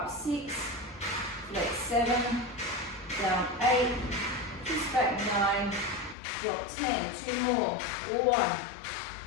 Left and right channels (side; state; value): right; drops out; at 6.2 s